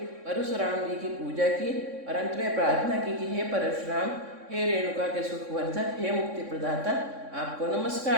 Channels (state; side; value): late; left; 3.6 ms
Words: परशुराम जी की पूजा की और अंत में प्रार्थना की कि हे परशुराम, हे रेणुका के सुखवर्धक, हे मुक्ति प्रदाता, आपको